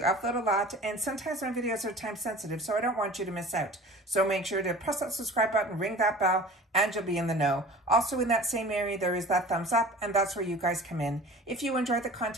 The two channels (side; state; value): both; normal; correlation 0.41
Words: upload a lot, and sometimes my videos are time sensitive, so I don't want you to miss out. So make sure to press that subscribe button, ring that bell, and you'll be in the know. Also in that same area, there is that thumbs up, and that's where you guys come in. If you enjoy the